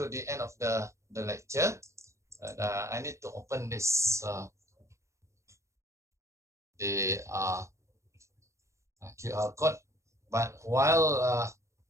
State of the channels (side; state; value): left; late; 0.14 ms